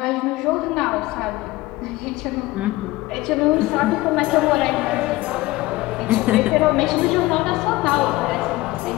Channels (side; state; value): right; quieter; 19.2 dB